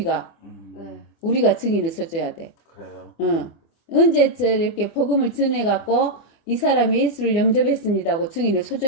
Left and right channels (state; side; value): late; right; 24 ms